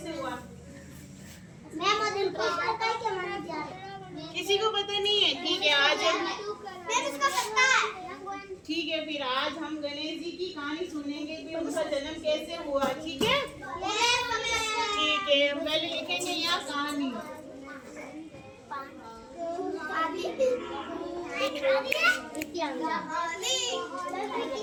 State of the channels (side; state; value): both; identical; correlation 1.00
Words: हुआ? मैम मुझे पता है कि हमारा जा किसी को पता नहीं है? ठीक है, आज हम मैम इसको पता है। ठीक है, फिर आज हम गणेश जी की कहानी सुनेंगे कि उनका जन्म कैसे हुआ, ठीक है? ठीक है, हम पहले लिखेंगे यहाँ कहानी।